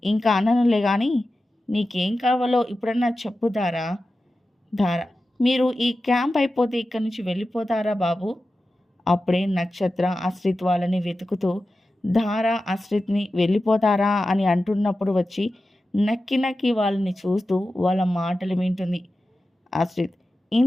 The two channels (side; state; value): both; normal; correlation 0.93